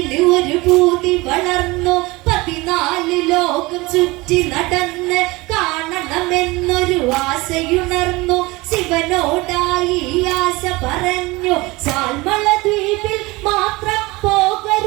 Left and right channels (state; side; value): quieter; left; 22.5 dB